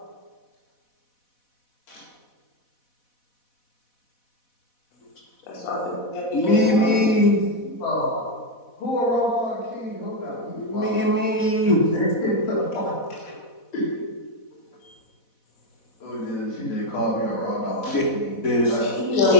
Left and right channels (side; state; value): right; late; 4.1 ms